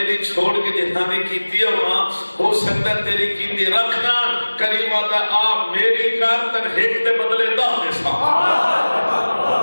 چھوڑ کے جنہاں نے کیتی ہے وہاں ہو سکتا تیری کیتی رکھنا کریمہ دا آپ میری کار تن ہیک دے بدلے دا دیسا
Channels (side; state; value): both; inverted; correlation -1.00